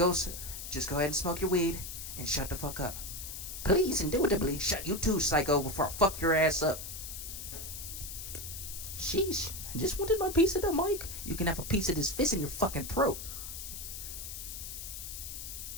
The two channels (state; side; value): noise; left; hiss, 8 dB below the sound